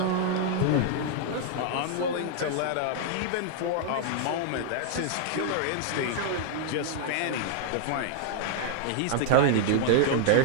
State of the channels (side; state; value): both; different; correlation -0.01